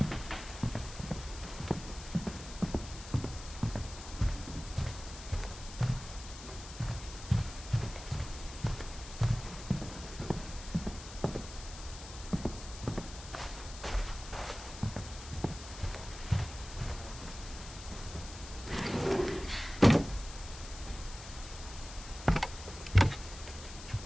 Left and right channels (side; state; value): left; noise; hiss, 13 dB below the sound